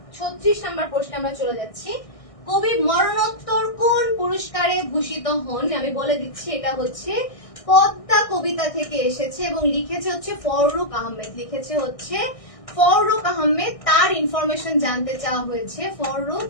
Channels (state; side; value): late; right; 1.6 ms